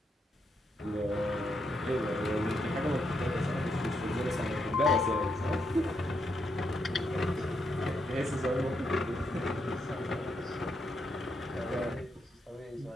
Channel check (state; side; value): normal; both; correlation 0.80